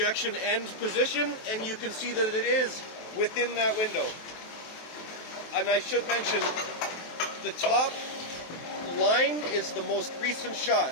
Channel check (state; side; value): late; right; 23 ms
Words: end position, and you can see that it is within that window. and I should mention, the top line is the most recent